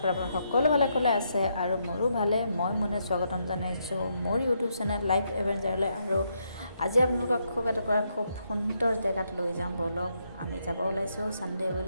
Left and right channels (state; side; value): inverted; both; correlation -0.78